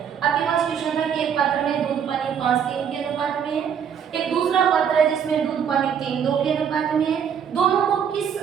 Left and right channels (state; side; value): quieter; left; 7.9 dB